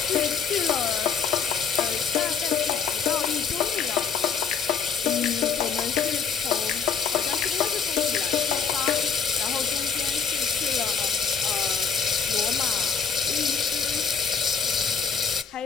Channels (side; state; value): right; quieter; 6.2 dB